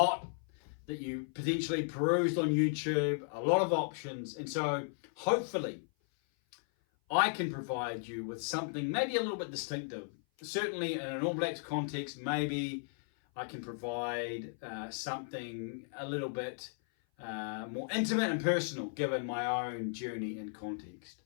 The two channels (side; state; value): right; silent; 54 dB below the other